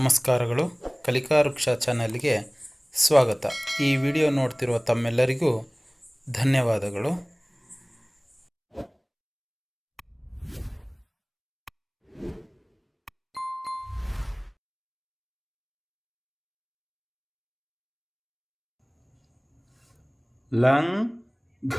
ಕಲಿಕಾ ವೃಕ್ಷ ಚಾನಲ್ಗೆ ಸ್ವಾಗತ. ಈ ವಿಡಿಯೋ ನೋಡ್ತಿರುವ ತಮ್ಮೆಲ್ಲರಿಗೂ ಧನ್ಯವಾದಗಳು.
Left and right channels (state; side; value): identical; both; correlation 1.00